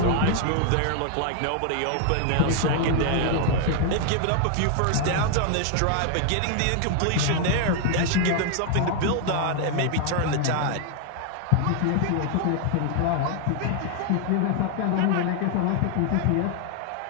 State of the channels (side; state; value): both; different; correlation 0.00